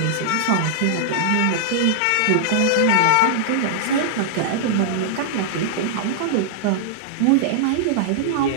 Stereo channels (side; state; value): both; different; correlation -0.01